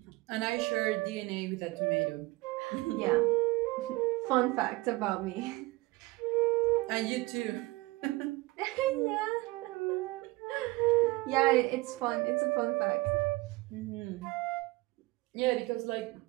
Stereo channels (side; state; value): left; quieter; 21.7 dB